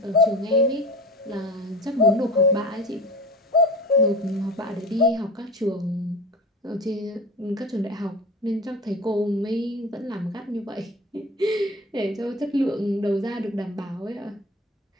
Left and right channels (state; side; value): normal; both; correlation 0.33